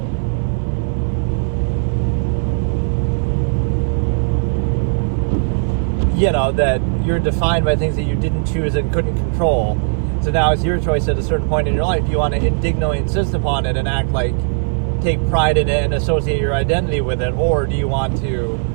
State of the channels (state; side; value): silent; left; 67 dB below the other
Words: that you're defined by things that you didn't choose and couldn't control. So now it's your choice at a certain point in your life. Do you want to indignantly insist upon it and act like, take pride in it and associate your identity with it, or do you want to